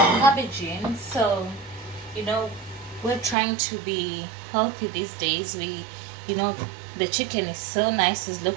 cabbage in. So, you know, we're trying to be healthy these days. You know, the chicken is so nice. It's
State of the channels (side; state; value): left; drops out; at 3.4 s